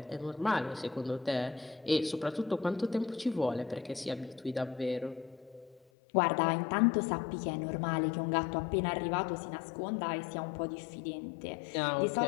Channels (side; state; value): right; drops out; at 5.8 s